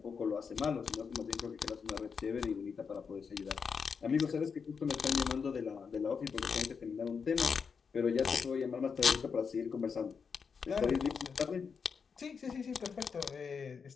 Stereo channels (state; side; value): quieter; right; 5.9 dB